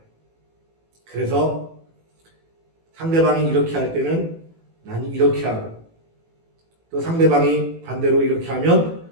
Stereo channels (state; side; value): late; left; 18 ms